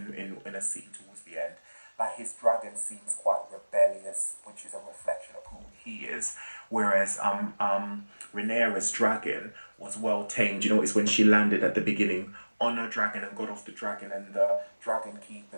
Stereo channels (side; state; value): both; inverted; correlation -1.00